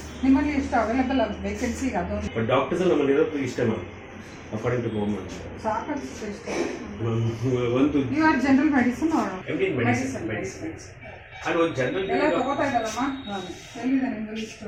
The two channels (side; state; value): both; identical; correlation 1.00